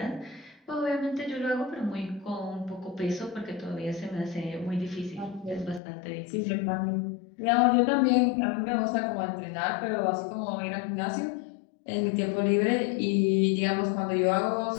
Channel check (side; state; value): right; drops out; at 5.8 s